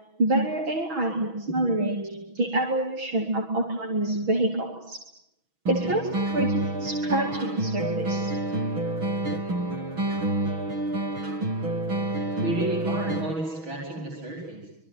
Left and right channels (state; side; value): late; left; 6.2 ms